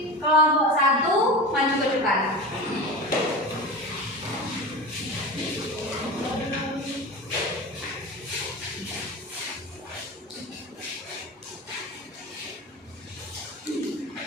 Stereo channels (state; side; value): normal; both; correlation 0.28